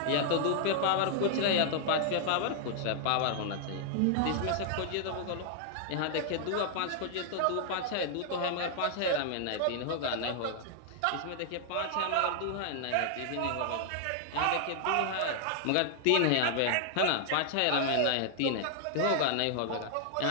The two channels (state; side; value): different; both; correlation -0.01